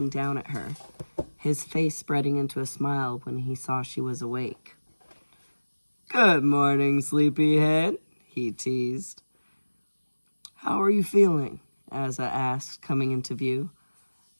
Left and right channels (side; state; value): both; inverted; correlation -1.00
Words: down at her, his face spreading into a smile when he saw she was awake. "Good morning, sleepyhead," he teased. "How are you feeling?" Asa asked, coming into view.